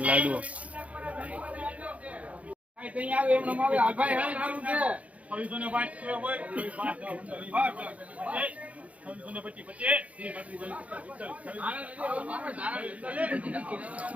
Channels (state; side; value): late; left; 0.067 ms